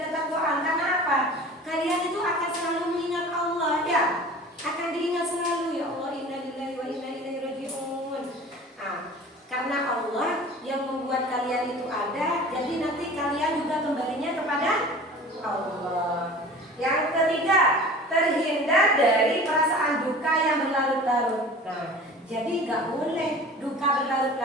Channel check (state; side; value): normal; both; correlation 0.41